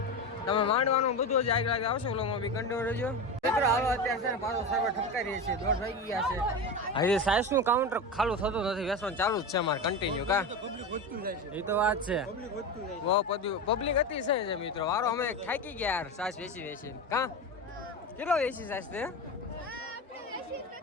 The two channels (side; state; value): both; normal; correlation 0.22